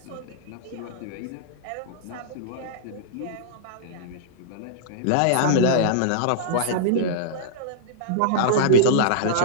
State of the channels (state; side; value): different; both; correlation -0.02